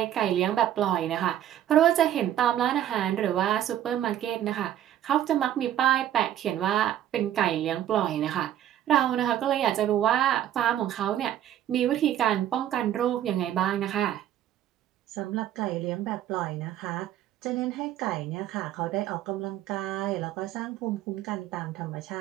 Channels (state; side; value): quieter; left; 11.6 dB